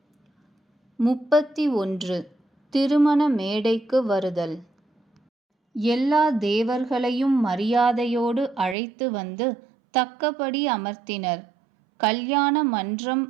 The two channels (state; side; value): drops out; left; at 8.8 s